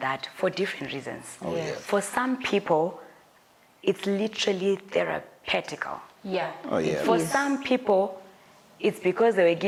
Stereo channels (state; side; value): identical; both; correlation 1.00